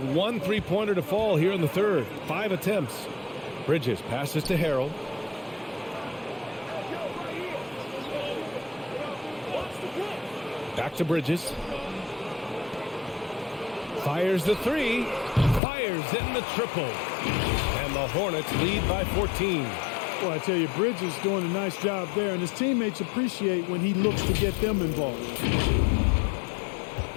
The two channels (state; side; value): drops out; right; at 15.6 s